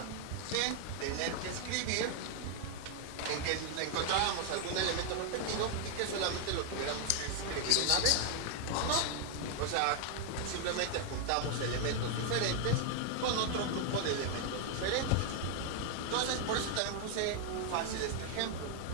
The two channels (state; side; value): different; both; correlation 0.00